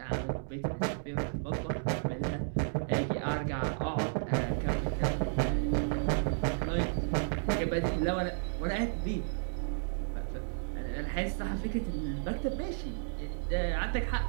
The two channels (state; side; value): silent; left; digital silence